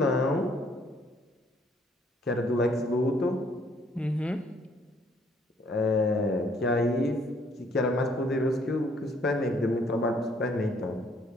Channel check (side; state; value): both; normal; correlation 0.64